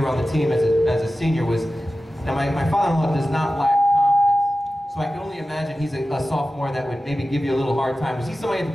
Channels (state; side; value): normal; both; correlation 0.94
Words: on the team as a senior. Now, my father-in-law does not lack confidence, so I can only imagine he's a sophomore that would maybe give you a little hard time. Was he somebody to